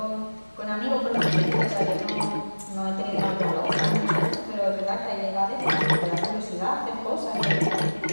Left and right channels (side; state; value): both; inverted; correlation -1.00